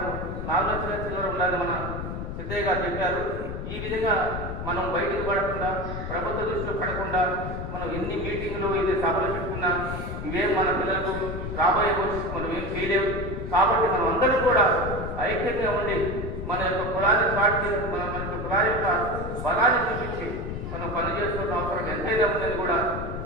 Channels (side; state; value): left; noise; rumble, 6 dB below the sound